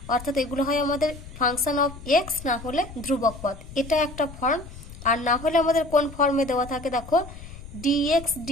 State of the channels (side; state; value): left; noise; rumble, 15 dB below the sound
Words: অর্থাৎ এগুলো হয় আমাদের ফাংশন অফ এক্স, না হলে ধ্রুবক পদ। এটা একটা ফর্ম। আর না হলে আমাদের কোন ফর্মে দেওয়া থাকে দেখো, dx